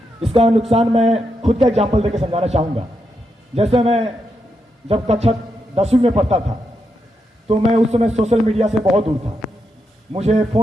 इसका नुकसान मैं खुद का एग्जाम्पल देकर समझाना चाहूँगा। जैसे मैं जब कक्षा 10वीं में पढ़ता था तो मैं उस समय सोशल मीडिया से बहुत दूर था, मुझे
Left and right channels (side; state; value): both; normal; correlation 0.83